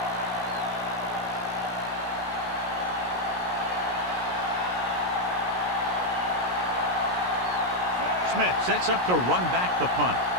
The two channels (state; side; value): late; left; 17 ms